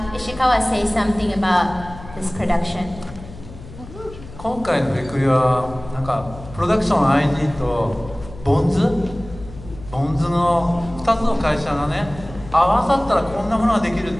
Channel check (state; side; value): noise; left; hum, 16 dB below the sound